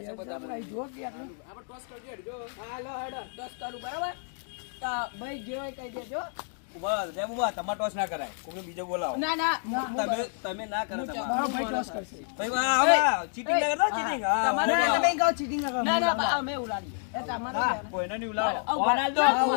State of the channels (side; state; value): right; silent; 58 dB below the other